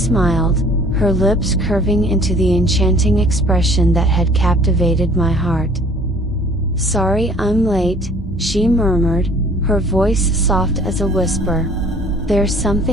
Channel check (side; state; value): both; normal; correlation 0.53